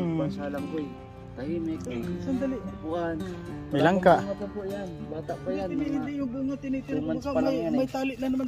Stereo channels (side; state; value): both; identical; correlation 1.00